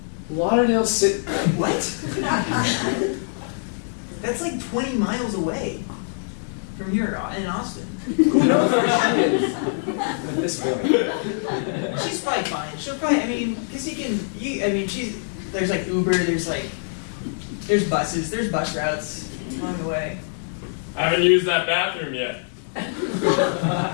Lauderdale City. What? That's like 20 miles away from here in Austin. Who knows where she is with this feeling? She's probably fine. She'll probably, because there's like Uber, there's buses, there's bus routes along the way. I haven't used that bathroom yet.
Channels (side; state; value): right; silent; digital silence